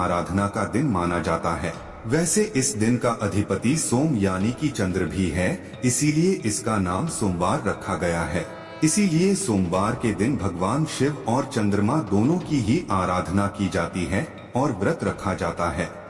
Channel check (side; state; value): both; identical; correlation 1.00